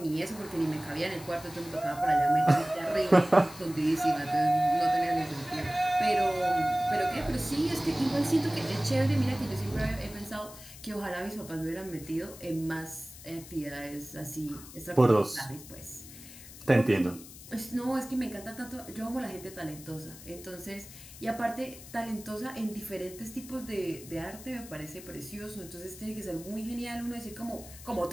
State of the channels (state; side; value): noise; left; hiss, 16 dB below the sound